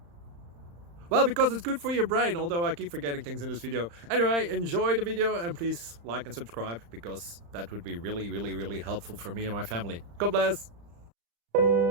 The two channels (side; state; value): left; late; 35 ms